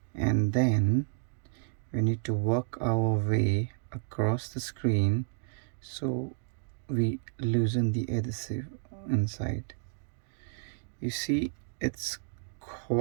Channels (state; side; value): silent; left; digital silence